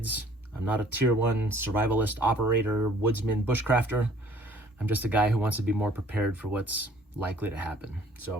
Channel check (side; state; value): both; normal; correlation 0.55